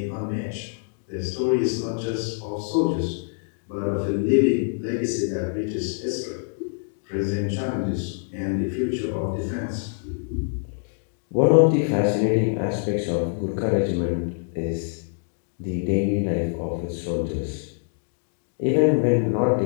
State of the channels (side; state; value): right; silent; digital silence